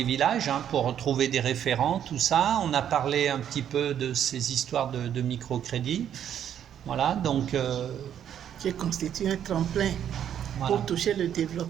villages, hein, pour trouver des référents, tout ça. On a parlé un petit peu de ces histoires de microcrédit. Voilà, donc... qui constitue un tremplin pour toucher le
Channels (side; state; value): left; quieter; 9.6 dB